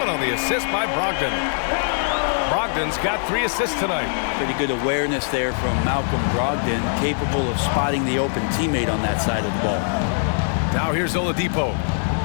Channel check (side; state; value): right; silent; digital silence